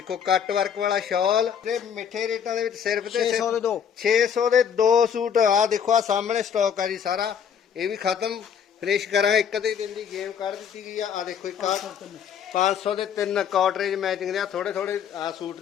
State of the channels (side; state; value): right; quieter; 7.9 dB